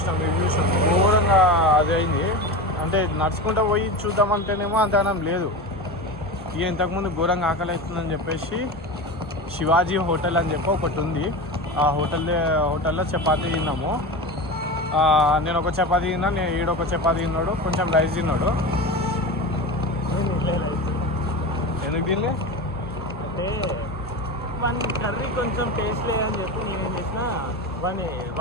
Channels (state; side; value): normal; both; correlation 0.25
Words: ఇవి చూసినాం. ఘోరంగా అది అయింది. అంటే నడుచుకుంటూ పోయి చూద్దామంటేనేమో అంతగానం లేదు. ఇక ఇంతకుముందు ఘోరంగా ఆకలి అవుతుందని చెప్పేసి శివాజీ హోటల్ అని చెప్పి ఒకటి ఉంది. ఆ హోటల్లో చపాతీ తిన్నాము. నేను ఒక చపాతీ తిన్నా, నేను ఈడొక చపాతీ తిన్నాడు, కొంచెం రైస్ తిన్నాడు. ఎందుకు తినలే అంటే వన్ కర్రీ కొంచెం టేస్ట్ లేదని చెప్పి నేనేం చేసిన